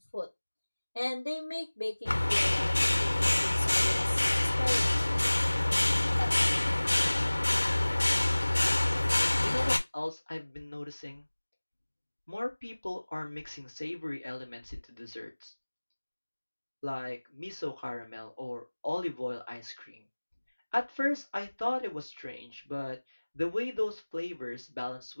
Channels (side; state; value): both; inverted; correlation -1.00